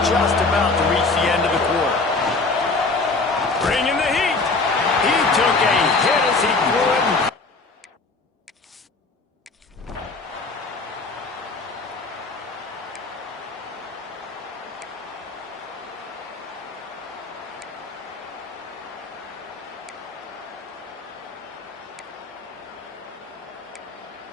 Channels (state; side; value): quieter; right; 3.7 dB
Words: just about to reach the end of the quarter. Bringing the heat. He took a hit as he threw it.